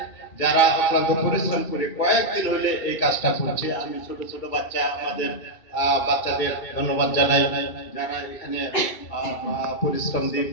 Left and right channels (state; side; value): late; right; 2.2 ms